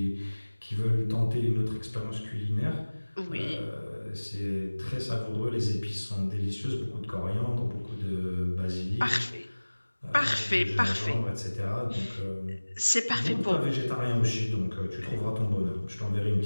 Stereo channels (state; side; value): inverted; both; correlation -1.00